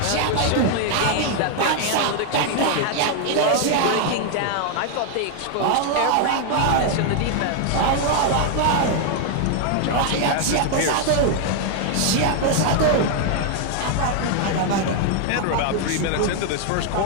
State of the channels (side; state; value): both; different; correlation 0.00